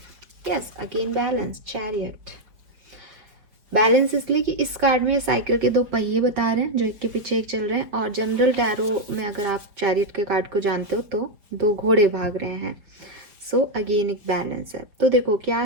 yes again balance, chariot. Balance इसलिए कि इस कार्ड में साइकिल के 2 पहिए बता रहे हैं जो एक के पीछे एक चल रहे हैं, और जनरल टैरो में अगर आप चैरियट के कार्ड को जानते हो तो 2 घोड़े भाग रहे हैं। सो अगेन एक बैलेंस है। तो देखो क्या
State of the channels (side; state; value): left; late; 4.9 ms